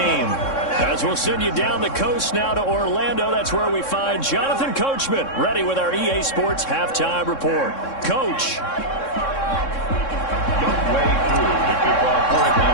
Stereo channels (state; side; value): late; right; 3.6 ms